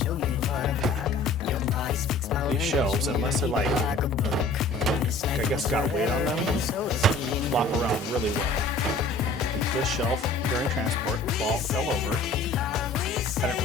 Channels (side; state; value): right; quieter; 3.4 dB